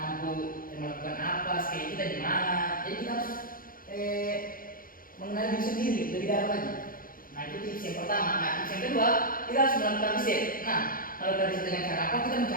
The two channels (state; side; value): late; right; 0.41 ms